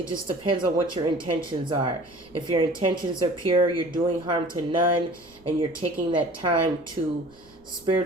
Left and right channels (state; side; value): noise; right; rumble, 28 dB below the sound